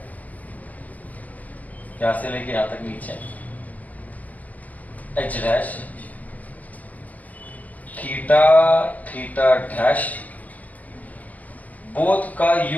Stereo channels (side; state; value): right; late; 0.077 ms